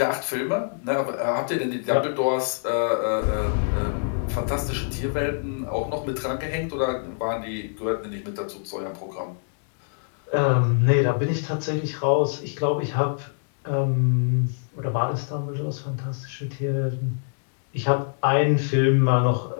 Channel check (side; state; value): right; silent; digital silence